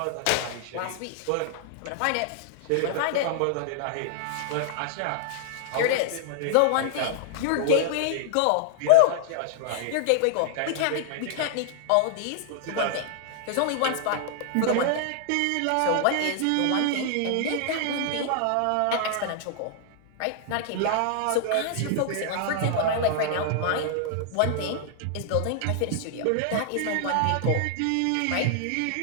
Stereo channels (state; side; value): different; both; correlation 0.00